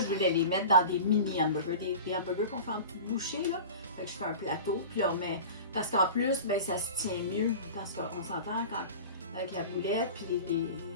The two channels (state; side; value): inverted; both; correlation -0.35